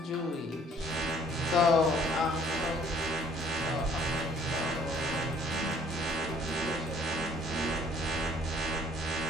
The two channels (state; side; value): normal; both; correlation 0.58